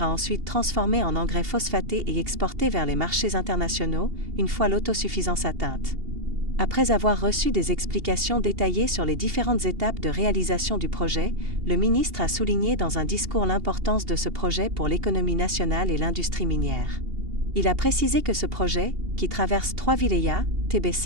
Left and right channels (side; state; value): left; late; 2.8 ms